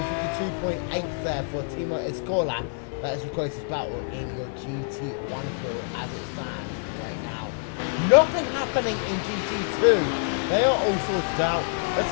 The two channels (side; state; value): right; silent; digital silence